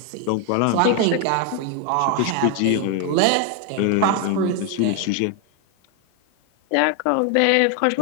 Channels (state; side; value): different; both; correlation 0.01